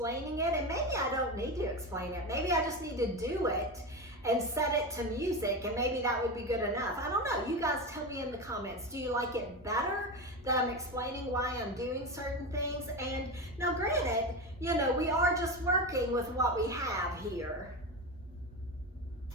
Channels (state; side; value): normal; both; correlation 0.20